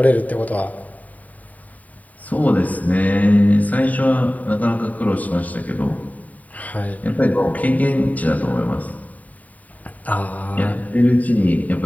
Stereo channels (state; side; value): late; right; 0.073 ms